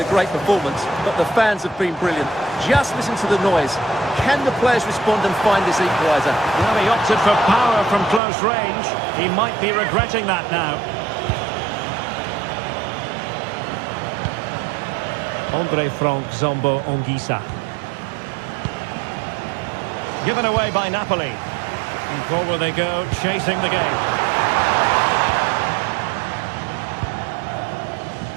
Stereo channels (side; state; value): left; drops out; at 8.2 s